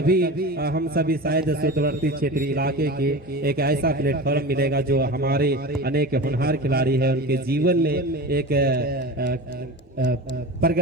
हम सभी शायद सुदूरवर्ती क्षेत्रीय इलाके के एक ऐसा प्लेटफॉर्म मिलेगा जो हमारे अनेक होनहार खिलाड़ी हैं उनके जीवन में एक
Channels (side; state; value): both; normal; correlation 0.30